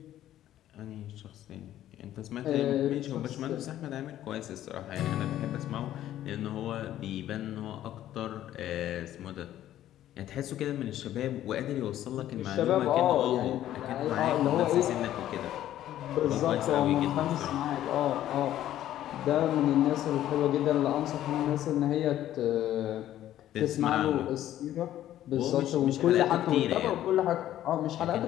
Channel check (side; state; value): right; quieter; 12.6 dB